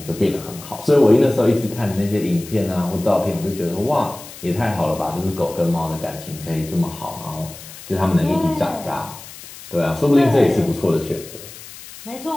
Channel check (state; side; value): noise; left; hiss, 16 dB below the sound